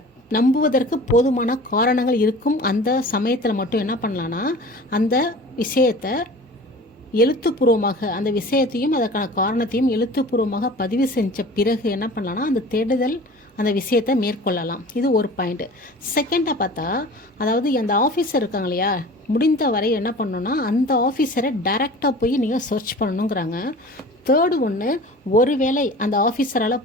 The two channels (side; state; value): both; normal; correlation 0.41